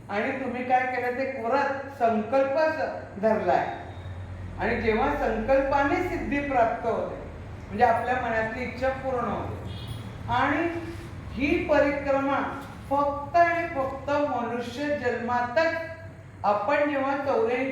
आणि तुम्ही काय केलं ते व्रत संकल्प धरलाय। आणि जेव्हा संकल्पाने सिद्धी प्राप्त होते म्हणजे आपल्या मनातली इच्छा पूर्ण होते। आणि ही परिक्रमा फक्त आणि फक्त मनुष्य जन्मातच आपण जेव्हा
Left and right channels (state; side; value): identical; both; correlation 1.00